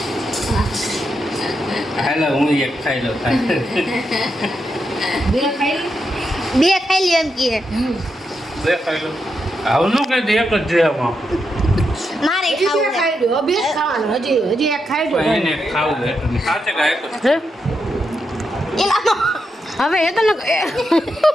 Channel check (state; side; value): normal; both; correlation 0.84